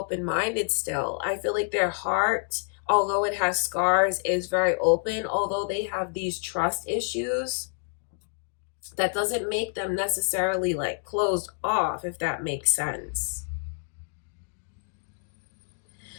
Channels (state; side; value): silent; right; 59 dB below the other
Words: still. I feel like their heart, although it has scars, is very open. Although they have these trust issues, that doesn't make them necessarily like closed off, if that makes sense.